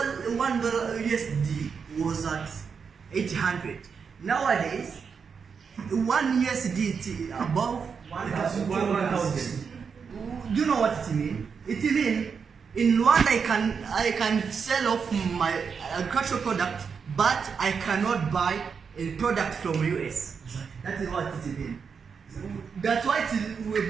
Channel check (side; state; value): left; quieter; 6.0 dB